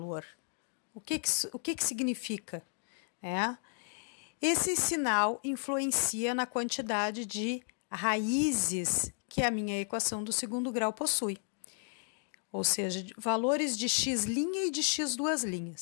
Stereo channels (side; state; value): right; silent; 55 dB below the other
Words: O que significa? Esse sinal influencia na quantidade de raízes que a minha equação do segundo grau possui. Ou seja, valores de x' e de x duas